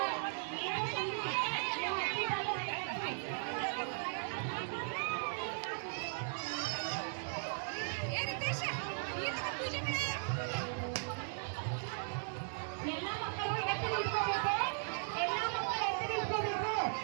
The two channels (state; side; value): silent; left; digital silence